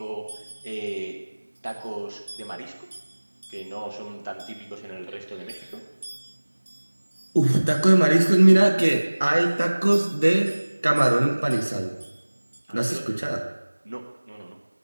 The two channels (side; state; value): both; inverted; correlation -1.00